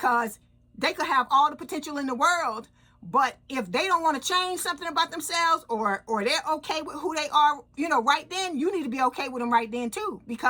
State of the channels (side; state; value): both; identical; correlation 1.00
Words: they could have all the potential in the world, but if they don't want to change something about themselves, or they're okay with who they are, right then, you need to be okay with them right then too,